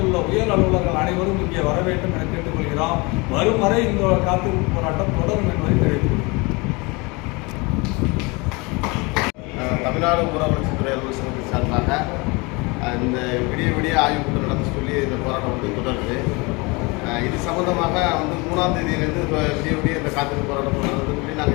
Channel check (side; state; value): right; quieter; 26.9 dB